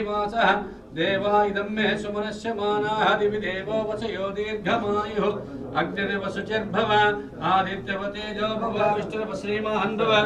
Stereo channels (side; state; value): both; identical; correlation 1.00